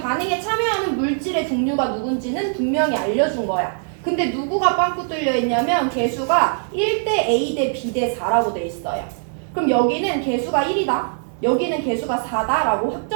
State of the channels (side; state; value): left; silent; digital silence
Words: 참여하는 물질의 종류가 누군지는 분명히 알려준 거야. 근데 누구가 빵꾸 뚫려 있냐면 개수가 1대 A 대 B 대 4라고 돼 있어요. 그럼 여기는 개수가 1이다. 여기는 개수가 4다라고